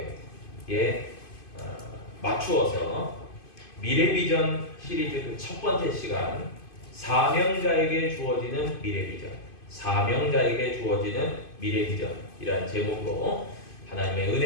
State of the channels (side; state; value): right; late; 2.5 ms